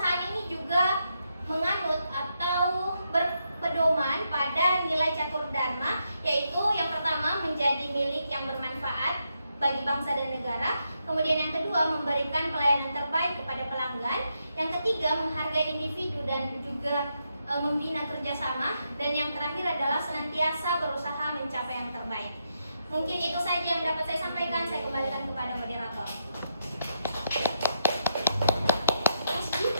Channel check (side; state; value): both; inverted; correlation -0.81